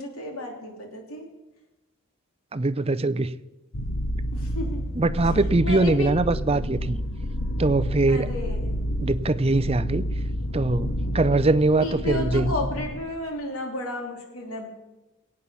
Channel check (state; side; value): normal; both; correlation 0.64